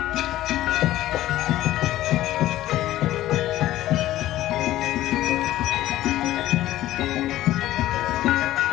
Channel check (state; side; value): quieter; right; 14.7 dB